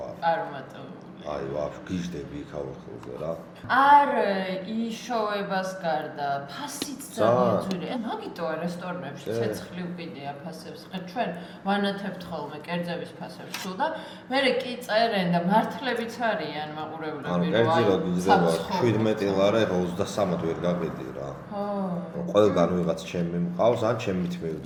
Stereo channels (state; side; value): identical; both; correlation 1.00